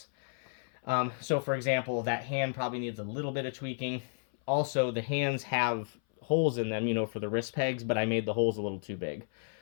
So for example, that hand probably needs a little bit of tweaking. Also, the hands have holes in them, for the wrist pegs, but I made the holes a little too big.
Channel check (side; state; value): right; silent; 56 dB below the other